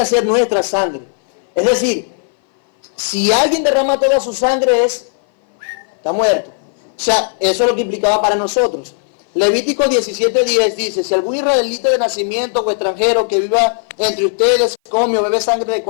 ser nuestra sangre. Es decir, si alguien derrama toda su sangre está muerto. O sea, eso es lo que implicaba para nosotros. Levítico 17:10 dice, si algún israelita de nacimiento o extranjero que viva entre ustedes come o bebe sangre de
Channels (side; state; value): right; silent; 59 dB below the other